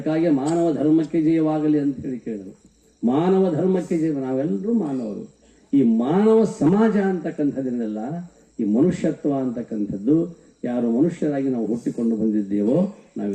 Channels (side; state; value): both; identical; correlation 1.00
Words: ಮಾನವ ಧರ್ಮಕ್ಕೆ ಜಯವಾಗಲಿ ಅಂತ ಹೇಳಿ ಕೇಳಿದರು. ಮಾನವ ಧರ್ಮಕ್ಕೆ ಜಯ, ನಾವೆಲ್ಲರೂ ಮಾನವರು. ಈ ಮಾನವ ಸಮಾಜ ಅಂತಕ್ಕಂಥದ್ದನ್ನೆಲ್ಲ, ಈ ಮನುಷ್ಯತ್ವ ಅಂತಕ್ಕಂಥದ್ದು, ಯಾರು ಮನುಷ್ಯರಾಗಿ ನಾವು ಹುಟ್ಟಿಕೊಂಡು ಬಂದಿದ್ದೇವೋ